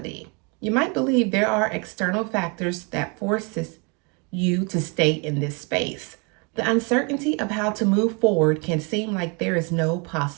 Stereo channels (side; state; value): left; quieter; 32.6 dB